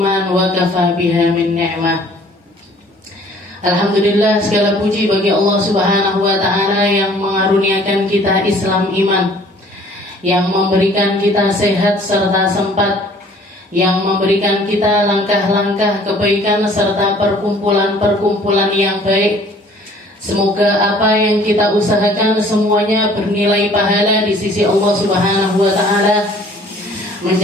wa kafa biha min ni'mah. Alhamdulillah, segala puji bagi Allah Subhanahu wa ta'ala yang mengaruniakan kita Islam iman, yang memberikan kita sehat serta sempat, yang memberikan kita langkah-langkah kebaikan serta perkumpulan-perkumpulan yang baik. Semoga apa yang kita usahakan semuanya bernilai pahala di sisi Allah Subhanahu wa ta'ala,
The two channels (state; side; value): normal; both; correlation 0.54